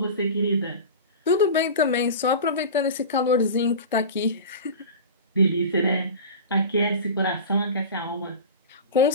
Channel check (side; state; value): both; inverted; correlation -0.31